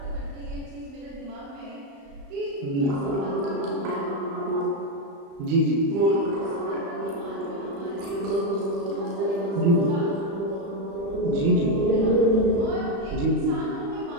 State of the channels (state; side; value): late; left; 35 ms